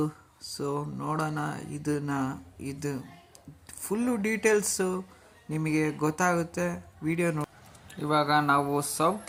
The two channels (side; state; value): both; identical; correlation 1.00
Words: ಸೊ ನೋಡೋಣ ಇದು ಫುಲ್ಲು ಡೀಟೇಲ್ಸು ನಿಮಗೆ ಗೊತ್ತಾಗುತ್ತೆ ವಿಡಿಯೋ ನೋಡಿ. ಇವಾಗ ನಾವು